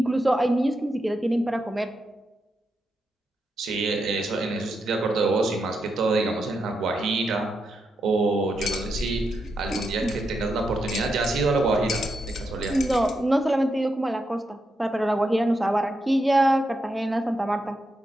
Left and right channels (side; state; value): both; normal; correlation 0.84